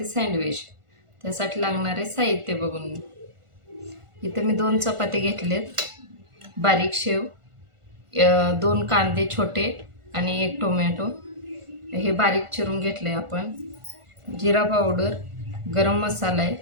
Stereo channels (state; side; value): late; left; 1.4 ms